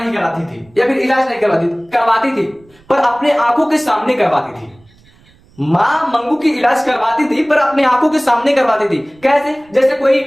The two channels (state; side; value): noise; right; rumble, 30 dB below the sound